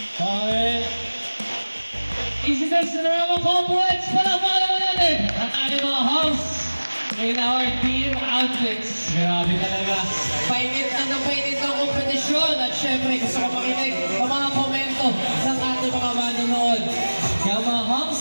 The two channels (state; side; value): inverted; both; correlation -1.00